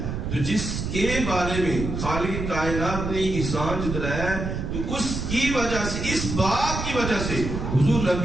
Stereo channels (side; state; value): right; noise; rumble, 4 dB below the sound